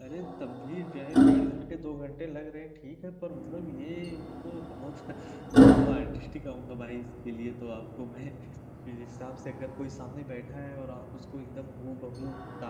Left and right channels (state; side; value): identical; both; correlation 1.00